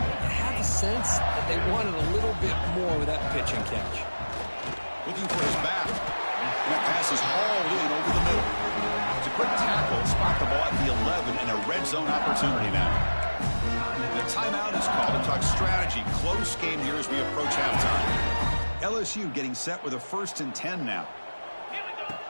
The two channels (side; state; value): both; inverted; correlation -1.00